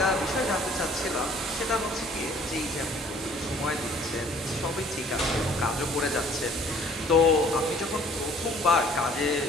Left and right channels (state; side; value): normal; both; correlation 0.56